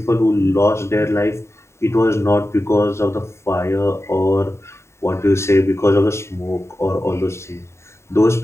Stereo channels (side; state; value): right; late; 0.13 ms